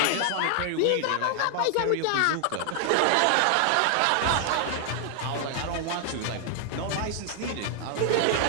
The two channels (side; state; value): both; different; correlation 0.00